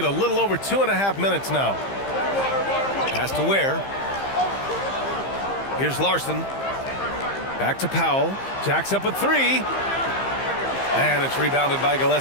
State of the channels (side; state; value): right; late; 15 ms